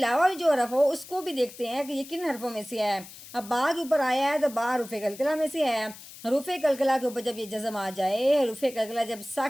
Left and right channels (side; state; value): left; noise; hiss, 17 dB below the sound